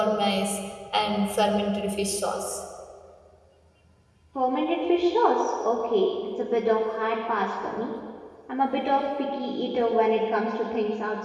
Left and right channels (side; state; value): both; identical; correlation 1.00